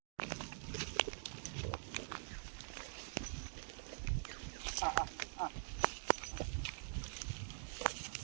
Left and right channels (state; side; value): silent; left; digital silence